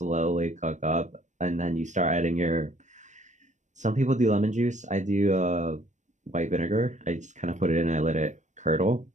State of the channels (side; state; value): left; late; 0.35 ms